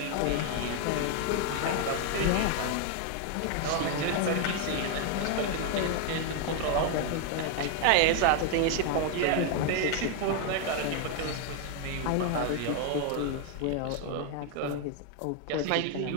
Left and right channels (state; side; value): different; both; correlation 0.01